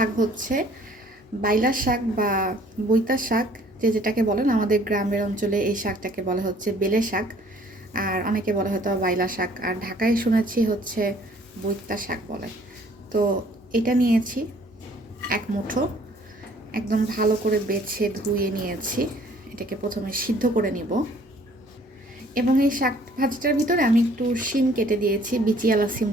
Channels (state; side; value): normal; both; correlation 0.57